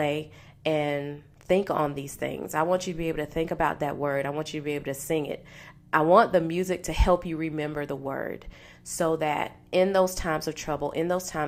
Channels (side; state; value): both; identical; correlation 1.00